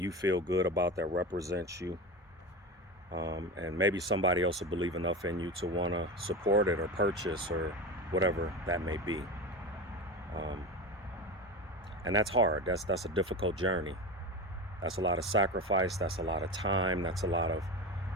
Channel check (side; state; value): both; normal; correlation 0.25